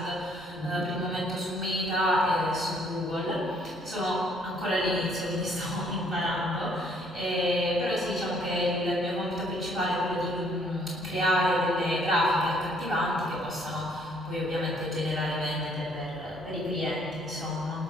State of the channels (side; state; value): both; normal; correlation 0.64